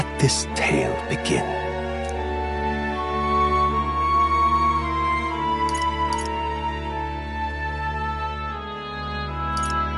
this tale begin.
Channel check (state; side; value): identical; both; correlation 1.00